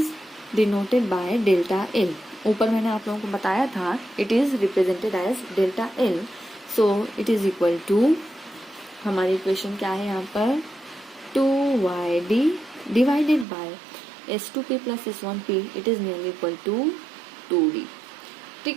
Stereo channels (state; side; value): drops out; left; at 13.5 s